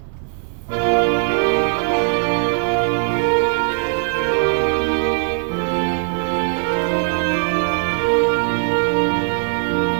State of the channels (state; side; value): silent; left; 59 dB below the other